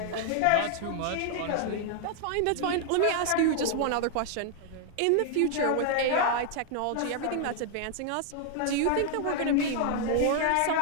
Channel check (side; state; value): both; different; correlation 0.00